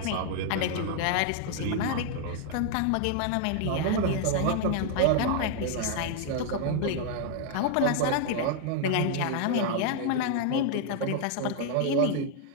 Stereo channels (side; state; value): both; different; correlation 0.00